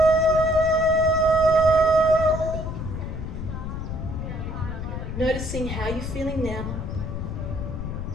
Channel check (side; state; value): left; noise; rumble, 5 dB below the sound